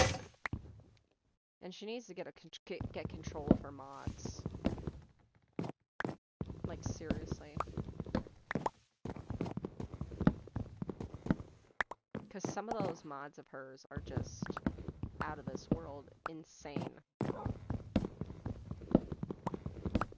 And she needs to get control of her mods. Like, seriously. Because some of those mods of hers are just out of this world insane.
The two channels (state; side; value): identical; both; correlation 1.00